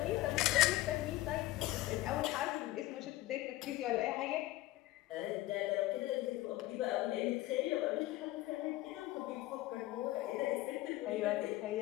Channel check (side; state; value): right; quieter; 17.2 dB